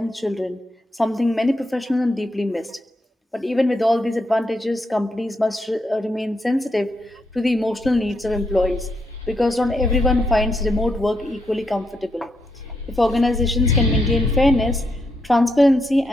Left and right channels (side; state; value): both; normal; correlation 0.80